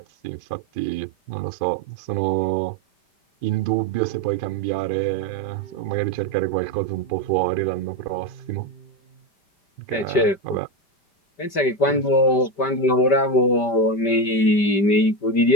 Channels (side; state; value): right; late; 5.1 ms